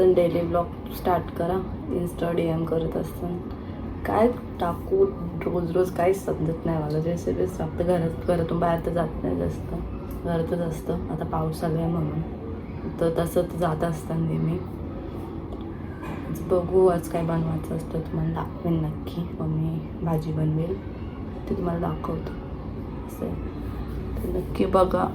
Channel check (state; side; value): identical; both; correlation 1.00